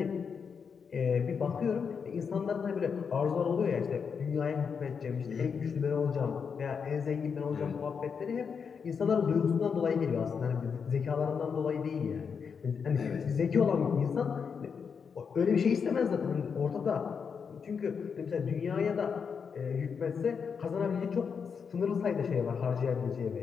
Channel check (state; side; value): quieter; right; 6.2 dB